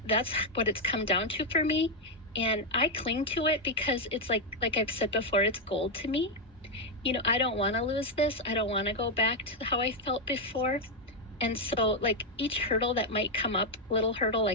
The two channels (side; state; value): both; normal; correlation 0.01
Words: that's what it's come down to for me. And I cling to it because it's like I've said before, it's gold to me. I don't want to lose this. I don't want to go back to how I felt before. And so like each hurdle that might come up, little hurdle,